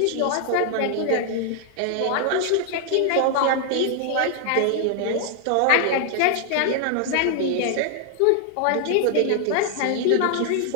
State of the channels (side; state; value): both; different; correlation 0.00